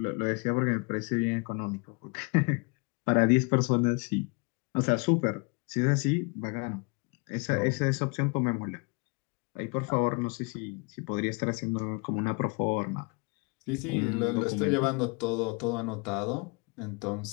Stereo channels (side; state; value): right; quieter; 31.0 dB